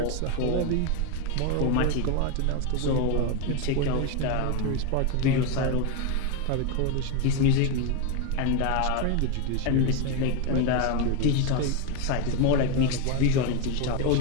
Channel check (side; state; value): both; different; correlation 0.02